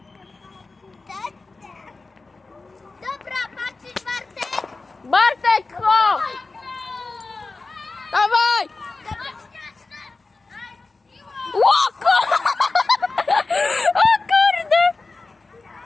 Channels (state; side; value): quieter; right; 3.7 dB